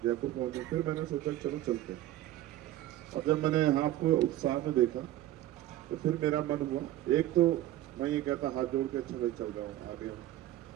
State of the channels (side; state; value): left; quieter; 14.3 dB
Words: जयपुर पहुंचे। फिर मैंने सोचा चलो चलते। और जब मैंने यहाँ आपको उत्साह में देखा तो फिर मेरा मन हुआ, एक तो मैं ये कहता हाथ जोड़ के अच्छा भाई चल रहा हूँ आगे हम।